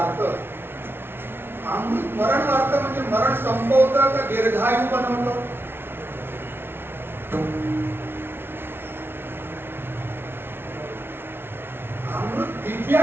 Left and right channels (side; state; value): left; late; 0.11 ms